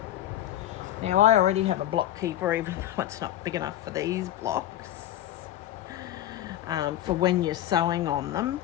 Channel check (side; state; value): right; quieter; 12.8 dB